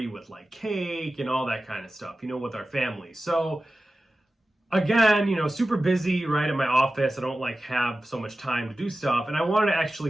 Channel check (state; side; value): normal; both; correlation 0.95